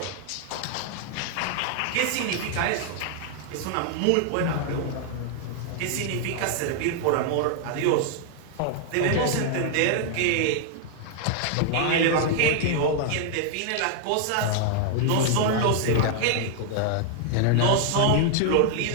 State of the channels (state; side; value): different; both; correlation 0.00